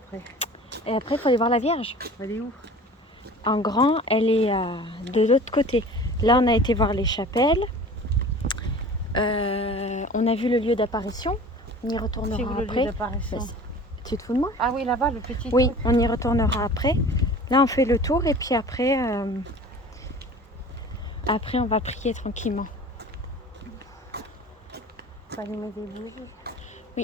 Et après, il faut aller voir la Vierge. Elle est où? En grand, elle est de l'autre côté. Là, on a été voir les chapelles. On a vu le lieu d'apparition. On y C'est retournera où le lieu après. d'apparition? Tu te fous de moi? Ah oui, là-bas, le petit Oui, truc. on y retournera après. Là, on fait le tour et puis après, on va prier tranquillement. Faut allumer des bougies.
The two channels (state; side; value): normal; both; correlation 0.42